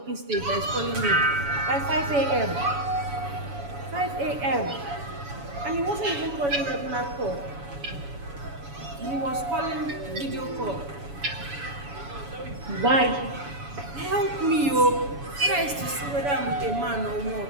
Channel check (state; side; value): late; left; 7.1 ms